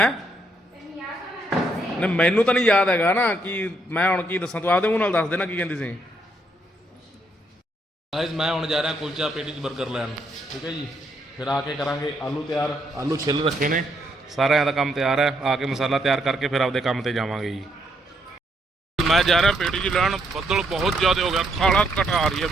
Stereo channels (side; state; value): both; normal; correlation 0.74